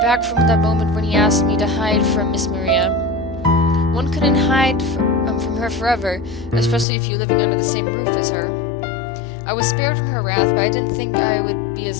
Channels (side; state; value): right; drops out; at 6.9 s